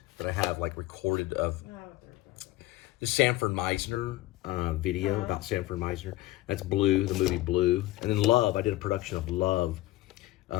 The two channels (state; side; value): quieter; right; 17.4 dB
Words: that I have like recorded of No, they're about it. the Sanford Meisner video about Sanford Meisner. That's Blue, the movie Blue. And then Love, I did a production of Love